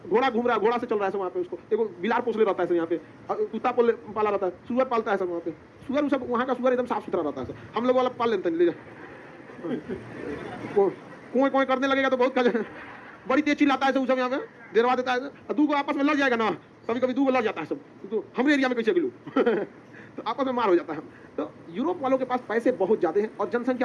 घोड़ा घूम रहा है, घोड़ा से चल रहा है सब वहाँ पे, उसको एगो बिलार पोसले रहता है सब यहाँ पे, कुत्ता पाला रहता है, सुअर पालता है सब वहाँ पे, सुअर सब वहाँ का सुअर एकदम साफ सुथरा रहता है सब। हम लोग वाला पाल लेते हैं, ले जा कुएं कुएं करने लगेगा तो बहुत बड़ी तेज चिल्लाता है सब यहाँ पे, देरवा देता है, दू को आपस में लड़ जाएगा ना, कभी कभी दू को लड़ जाता है सब, तो हमारे एरिया में कैसे गिलू तो आपस में मार हो जाता है। तो यूरोप वालों के पास पैसे बहुत ज़्यादा हैं और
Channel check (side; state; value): both; identical; correlation 1.00